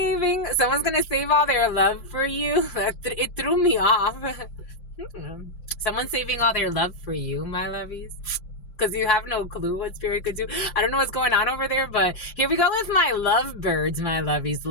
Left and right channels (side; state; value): right; late; 5.7 ms